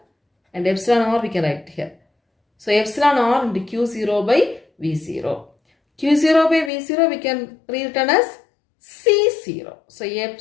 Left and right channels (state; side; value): drops out; right; at 6.7 s